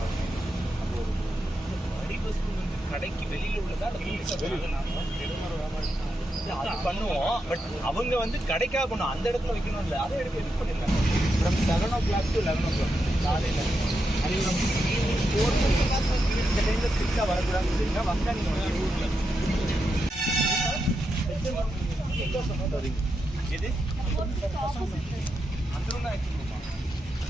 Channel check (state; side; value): normal; both; correlation 0.85